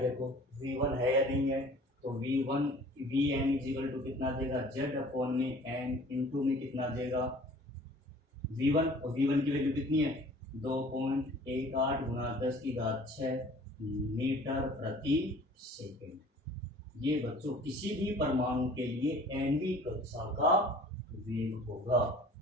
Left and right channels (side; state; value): both; normal; correlation 0.48